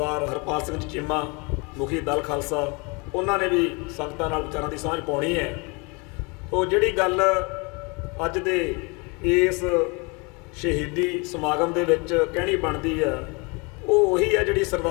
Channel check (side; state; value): right; quieter; 29.5 dB